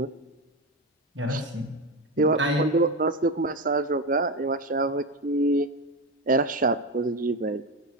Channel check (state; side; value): normal; both; correlation 0.16